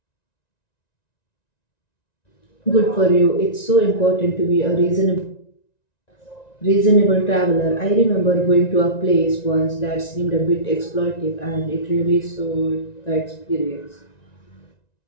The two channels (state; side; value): late; right; 1.9 ms